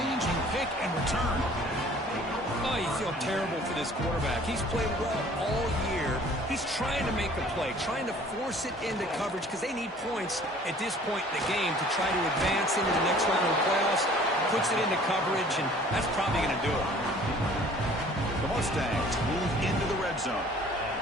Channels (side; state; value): both; normal; correlation 0.52